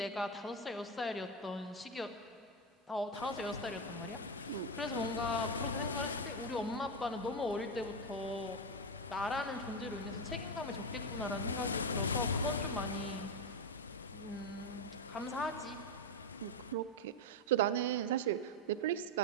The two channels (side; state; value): both; normal; correlation 0.09